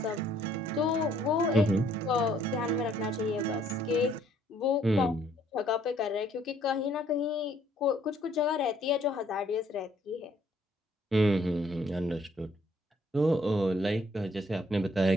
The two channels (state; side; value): normal; both; correlation 0.64